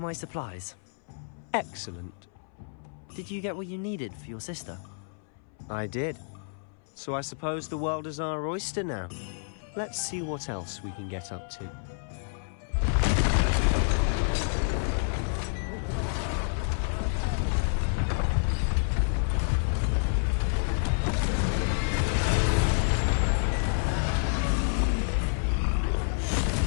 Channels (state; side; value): silent; right; 59 dB below the other